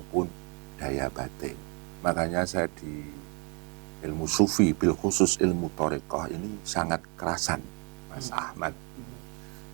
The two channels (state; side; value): quieter; left; 33.5 dB